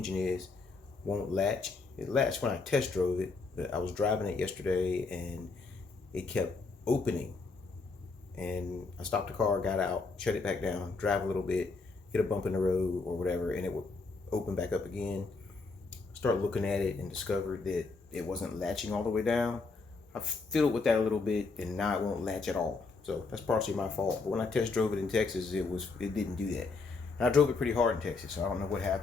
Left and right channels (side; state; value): right; quieter; 4.1 dB